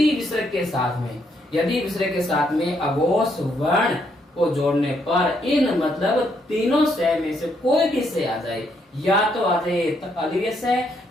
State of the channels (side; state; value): both; normal; correlation 0.74